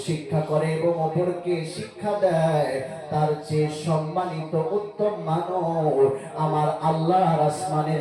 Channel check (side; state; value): both; identical; correlation 1.00